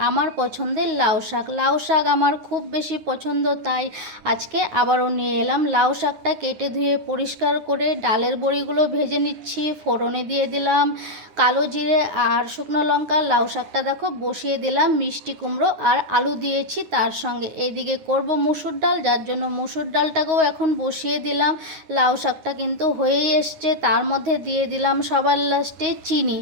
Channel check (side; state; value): left; late; 9.4 ms